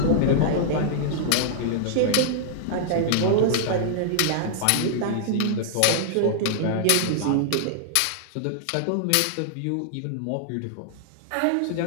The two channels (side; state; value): both; different; correlation -0.01